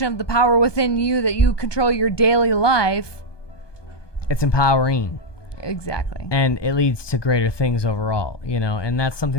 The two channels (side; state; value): right; late; 1.2 ms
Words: of the power within you that you control your daily life. It's empowering. Exactly. And it leads to greater things overall, you know, and that's